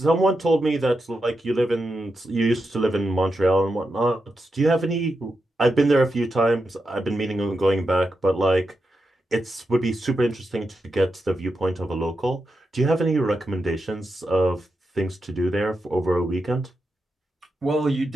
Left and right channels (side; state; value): both; normal; correlation 0.87